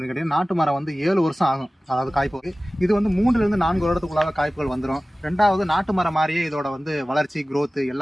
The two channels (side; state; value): both; normal; correlation 0.97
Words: கேட்டீங்கன்னா, நாட்டு மரம் வந்து 7 வருஷம் ஆகும், அதாவது காய்ப்புக்கு. இது வந்து 3 to 4 வருடத்துக்குள்ளாக காய்ப்புகள் வந்துடும். ரெண்டாவது, நாட்டு மரம் மாதிரியே இதோட வந்து வளர்ச்சி growth